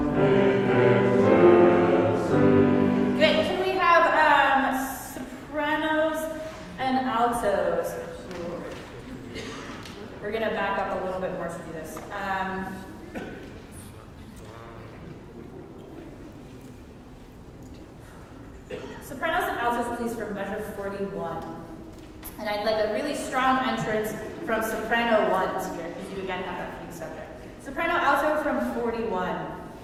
We're going to back up a little bit more to do this. Sopranos and altos, please, from measure 41. And I'd like a really strong entrance from soprano ones here, because you again have that key subject. Soprano alto from 41.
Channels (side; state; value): both; identical; correlation 1.00